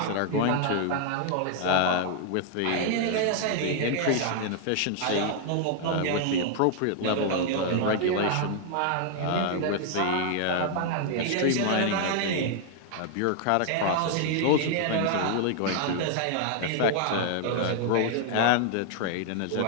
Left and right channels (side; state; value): both; different; correlation 0.00